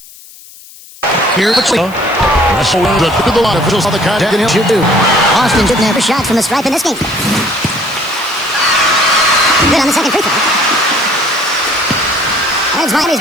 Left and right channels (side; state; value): left; noise; hiss, 21 dB below the sound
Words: Here's the wrestle to the line. Officials on the contact. And he'll do. Austin shooting there for shots from the stripe in this game. Good on the second free throw. There's